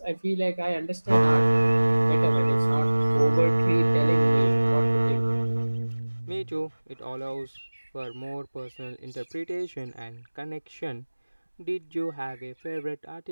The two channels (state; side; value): inverted; both; correlation -1.00